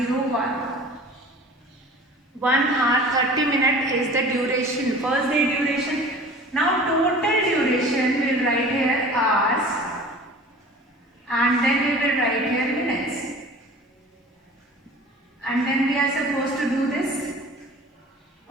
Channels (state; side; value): normal; both; correlation 0.43